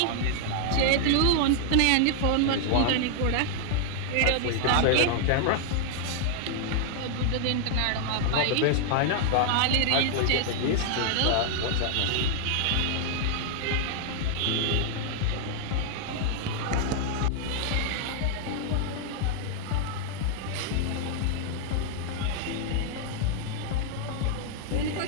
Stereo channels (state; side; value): different; both; correlation 0.00